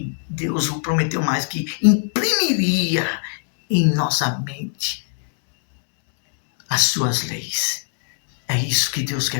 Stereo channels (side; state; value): right; silent; digital silence